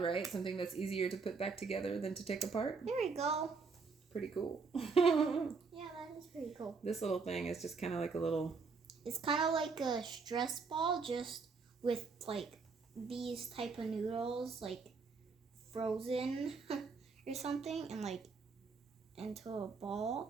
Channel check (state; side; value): quieter; left; 4.7 dB